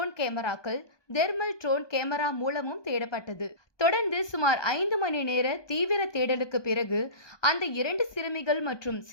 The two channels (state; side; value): late; right; 1.2 ms